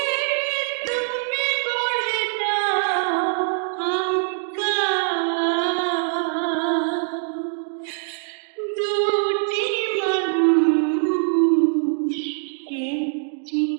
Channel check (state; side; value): silent; left; digital silence